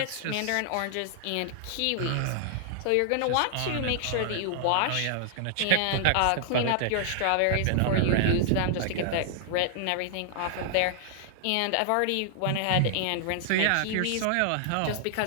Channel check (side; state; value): both; different; correlation -0.01